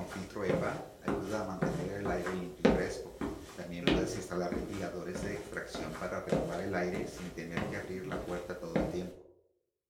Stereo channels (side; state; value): both; identical; correlation 1.00